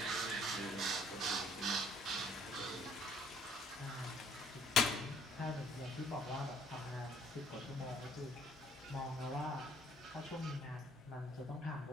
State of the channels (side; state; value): both; normal; correlation 0.59